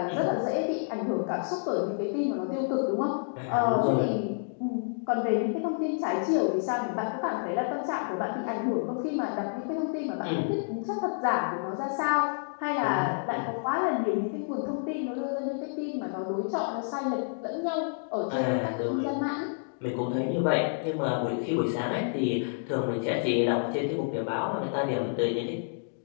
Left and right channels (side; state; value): right; silent; digital silence